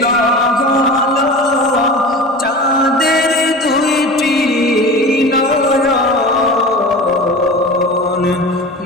হলো চাঁদের দুইটি নয়ন।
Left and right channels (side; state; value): both; normal; correlation 0.34